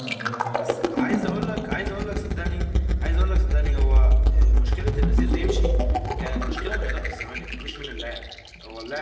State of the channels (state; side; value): identical; both; correlation 1.00